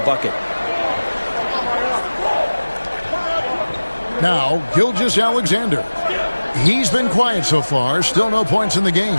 Now, Gilgeous-Alexander. He's been quiet so far. Still no points in the game.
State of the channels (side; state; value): both; inverted; correlation -1.00